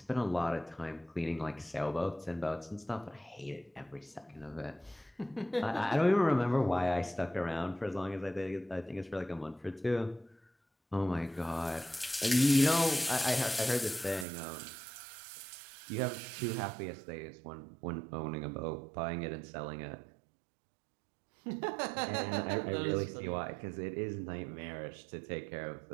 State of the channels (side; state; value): left; drops out; at 14.2 s